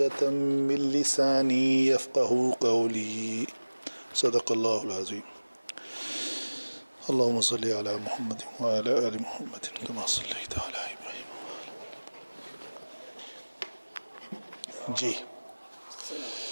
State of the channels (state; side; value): inverted; both; correlation -1.00